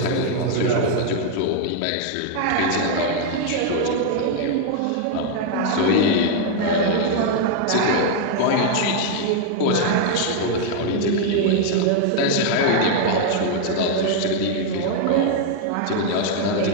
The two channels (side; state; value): both; different; correlation 0.00